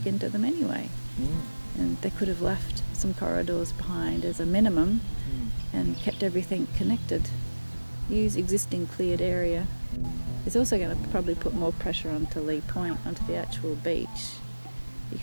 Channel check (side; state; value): both; inverted; correlation -1.00